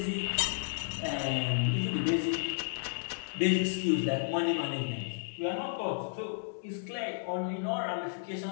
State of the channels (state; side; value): silent; right; digital silence